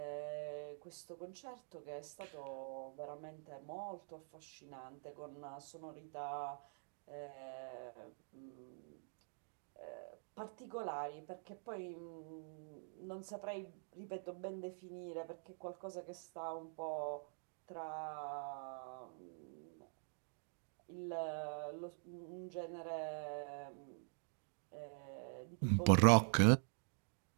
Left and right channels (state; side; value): silent; left; digital silence